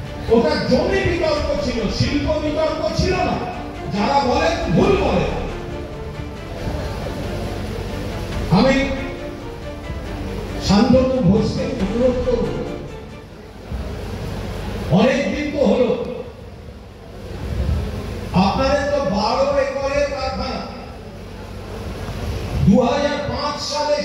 ওটা জমি বিতর্ক ছিল, শিল্প বিতর্ক ছিল না। যারা বলেন ভুল বলে। আমি শান্তনু ঘোষকে অনুরোধ করব, অনেকদিন তো হলো, আপনাদের তো 12 একরের কারখানা। 2005 সালে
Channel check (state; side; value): identical; both; correlation 1.00